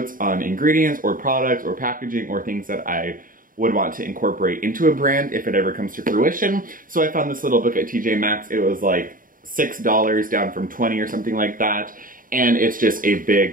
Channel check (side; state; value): left; late; 0.40 ms